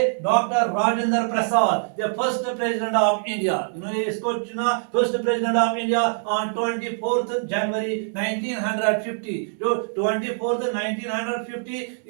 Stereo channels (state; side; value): silent; left; digital silence